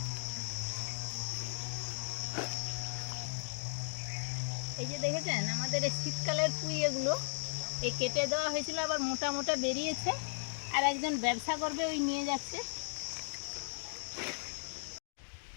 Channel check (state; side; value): silent; right; digital silence